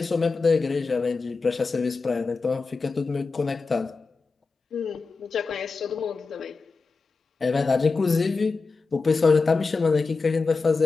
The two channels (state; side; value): quieter; right; 4.3 dB